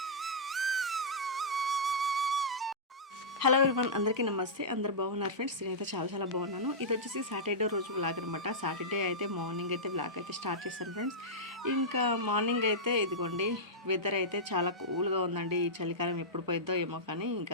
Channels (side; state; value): both; normal; correlation -0.13